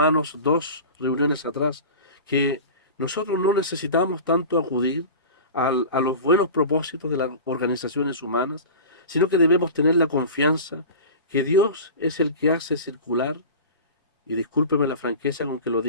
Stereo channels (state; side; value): inverted; both; correlation -0.34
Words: 2 reuniones atrás, que nosotros no necesitamos tanto acudir a los buenos propósitos de las organizaciones humanas, sino que debemos tener la confianza que Dios es el que hace circular, y discúlpeme la franqueza con que lo